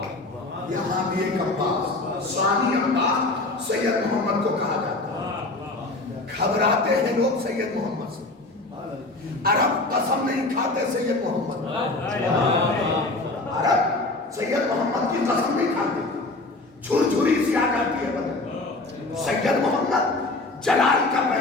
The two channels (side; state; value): right; quieter; 3.0 dB